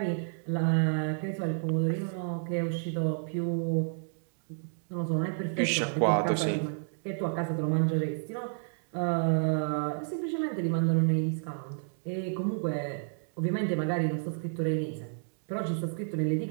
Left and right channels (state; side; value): silent; left; digital silence